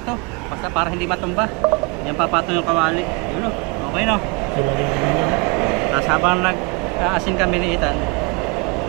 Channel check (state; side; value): quieter; left; 30.2 dB